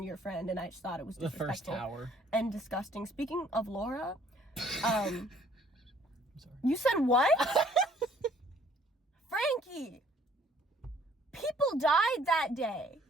your friend, and I just thought it was disrespectful. The first tower. And disgusting. Speaking of Laura, I'm sorry. You said what? Frankie! People died that day.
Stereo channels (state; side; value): normal; both; correlation 0.60